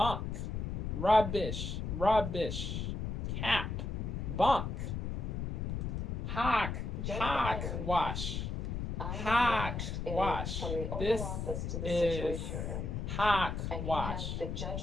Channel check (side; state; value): left; noise; rumble, 3 dB below the sound